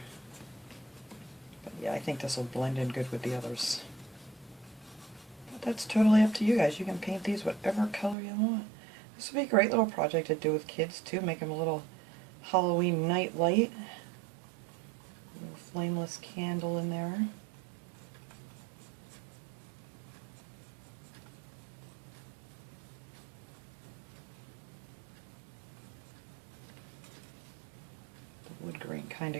But yeah, I think this will blend in good with the others. But that's totally up to you guys. You can paint these whatever color you want. This would be a great little project to do with kids too. Make them a little Halloween night light. A little flameless candle in there. The wood grain kind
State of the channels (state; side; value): drops out; left; at 8.2 s